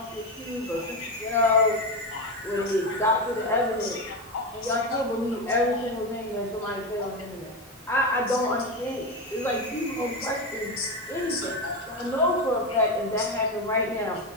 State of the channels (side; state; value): both; normal; correlation 0.14